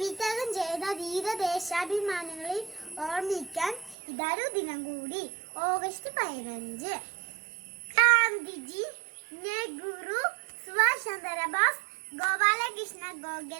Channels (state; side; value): drops out; left; at 4.0 s